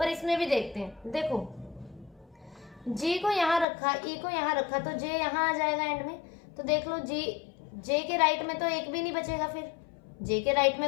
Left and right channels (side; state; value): right; drops out; at 3.7 s